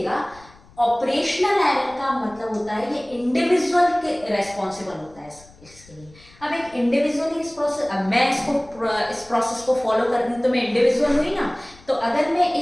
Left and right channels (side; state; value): left; noise; rumble, 25 dB below the sound